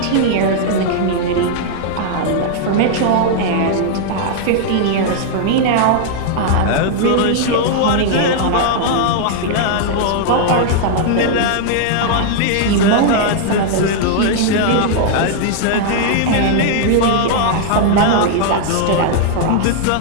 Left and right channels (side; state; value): both; different; correlation -0.01